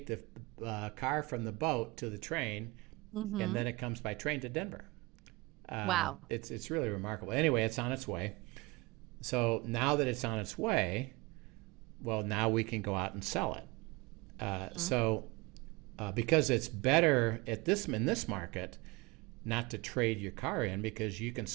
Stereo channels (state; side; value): quieter; left; 24.2 dB